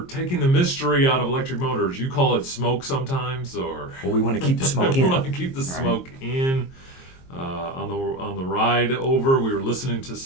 taking the mystery out of electric motors. You call it smoke sometimes, or... Well, we want to keep the smoke in. We want to keep the smoke in. On the ride over, we were listening to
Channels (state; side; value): late; right; 22 ms